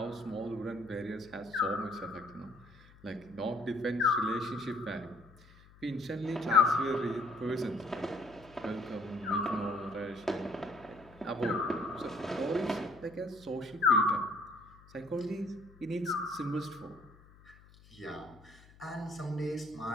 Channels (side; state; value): left; noise; hum, 24 dB below the sound